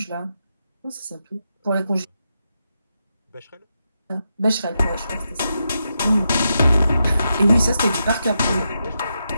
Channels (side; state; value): both; inverted; correlation -0.85